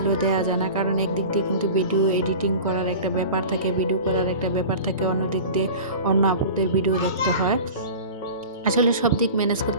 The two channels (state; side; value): inverted; both; correlation -0.35